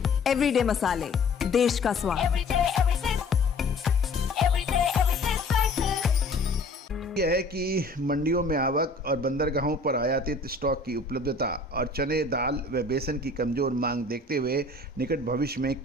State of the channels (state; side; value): quieter; right; 3.0 dB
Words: एवरीडे मसाले, देश का स्वाद। यह है कि मंडियों में आवक और बंदरगाहों पर आयातित स्टॉक की उपलब्धता और चने, दाल व बेसन की कमज़ोर मांग देखते हुए निकट भविष्य में